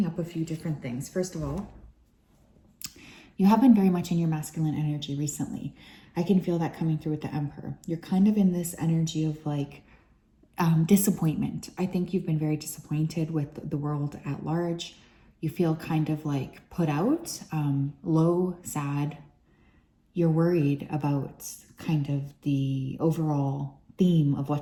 up a few different things. First of all, you have been very much in your masculine energy recently. I can feel that coming through with the Emperor. You're kind of in this energy of like disappointment. I think you've been very disappointed with the world at large. You feel kind of like put out, low, sad. You're worried about kind of the overall theme of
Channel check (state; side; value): identical; both; correlation 1.00